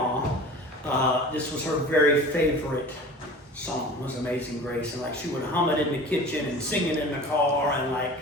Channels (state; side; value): normal; both; correlation 0.39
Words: this was her very favorite song, was Amazing Grace. And like she would hum it in the kitchen and sing it in the car. And